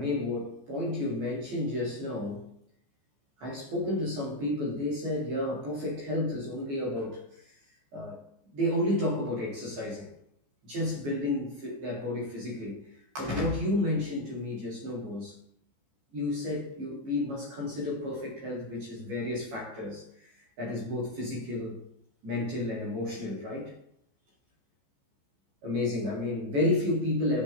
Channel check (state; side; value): late; left; 14 ms